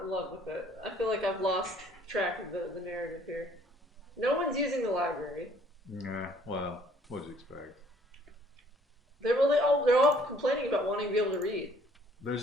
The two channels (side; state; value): both; normal; correlation 0.60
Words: in love with it. I feel like I've lost track of the narrative here. No one's using the library. Yeah, well, what'd you expect? They're all complaining about wanting to be able to read.